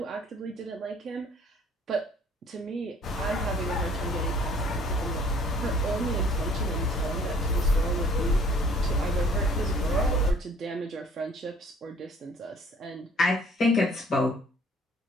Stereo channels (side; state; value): both; normal; correlation 0.56